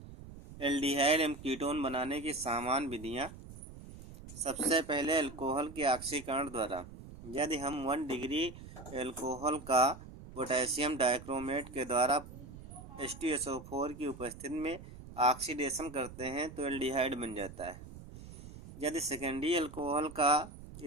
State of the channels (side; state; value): right; noise; rumble, 15 dB below the sound